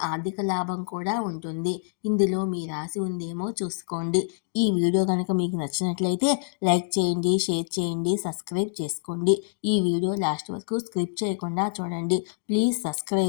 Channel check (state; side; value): silent; right; digital silence